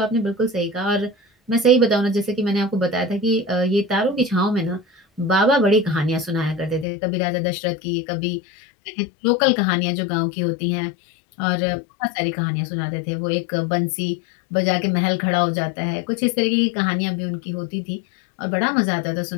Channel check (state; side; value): drops out; right; at 6.9 s